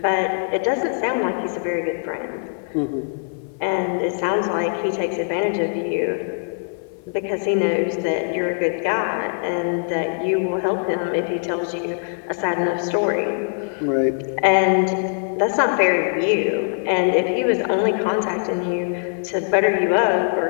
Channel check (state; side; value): silent; right; 56 dB below the other